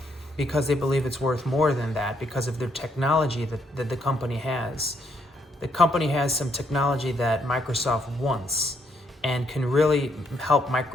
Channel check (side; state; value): both; normal; correlation 0.73